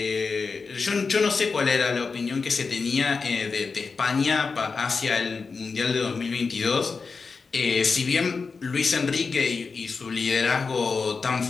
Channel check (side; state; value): right; quieter; 4.7 dB